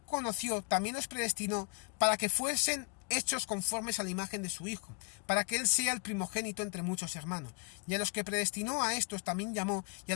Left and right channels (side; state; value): right; quieter; 37.8 dB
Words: conoció también los predestinó para que fuesen hechos conformes a la imagen de su Hijo, para que Él sea el primogénito entre muchos hermanos. Y a los que predestinó a estos también llamó, y a